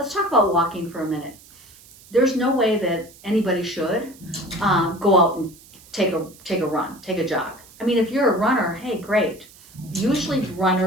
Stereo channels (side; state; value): right; noise; hiss, 23 dB below the sound